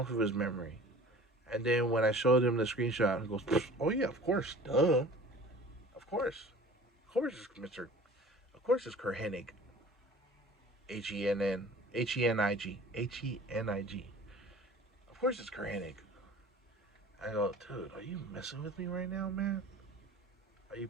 of his memory. And then when I showed him the screenshot, he goes, "Oh yeah, of course, duh, of course it's Mister, of course it's Curt Hennig, Hennig. Of course it's Curt Hennig." I go, "Dude, are you messing with me right now, man? Are you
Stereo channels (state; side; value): normal; both; correlation 0.44